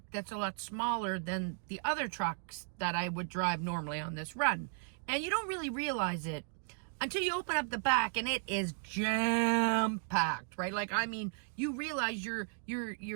that's a lot smaller than the other trucks that I would drive normally on this run. And you don't really realize it until you open up the back and it is jam-packed, right? Like, I mean, you realize your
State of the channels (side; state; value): left; silent; 54 dB below the other